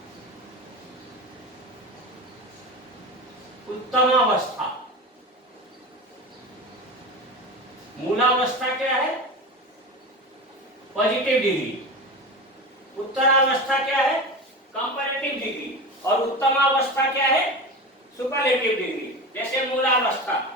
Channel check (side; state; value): both; normal; correlation 0.27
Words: उत्तमावस्था। मूलावस्था क्या है? Positive degree. उत्तरावस्था क्या है? Comparative degree. और उत्तमावस्था क्या है? Superlative degree. जैसे मूलावस्था